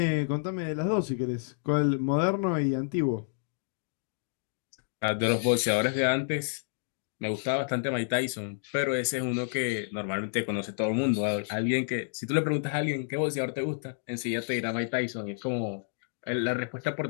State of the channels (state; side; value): silent; right; digital silence